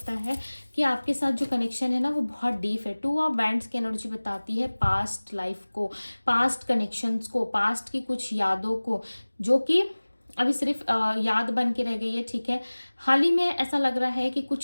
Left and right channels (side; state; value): both; inverted; correlation -1.00